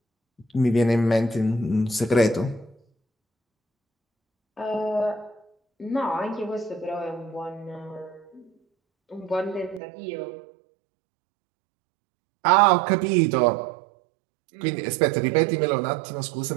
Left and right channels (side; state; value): left; drops out; at 9.8 s